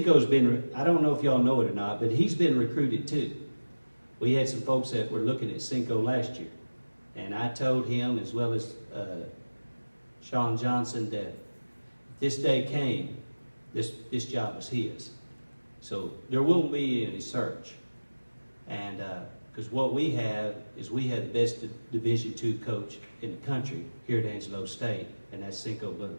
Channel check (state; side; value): inverted; both; correlation -1.00